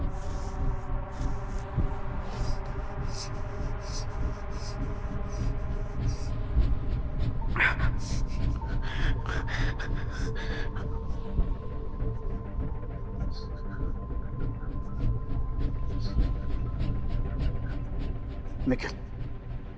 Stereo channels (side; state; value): both; identical; correlation 1.00